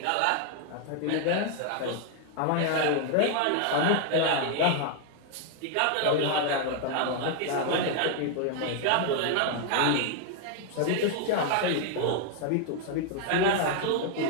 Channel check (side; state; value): both; different; correlation 0.00